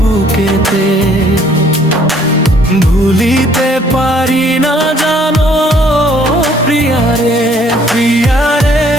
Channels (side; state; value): both; normal; correlation 0.61